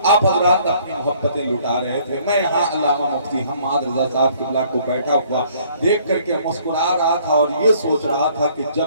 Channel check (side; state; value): both; inverted; correlation -0.60